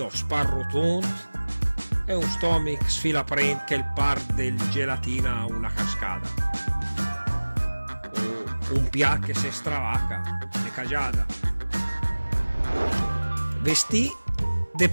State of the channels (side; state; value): both; inverted; correlation -1.00